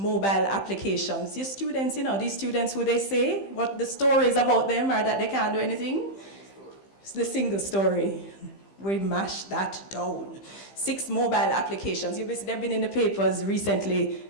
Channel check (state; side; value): late; right; 15 ms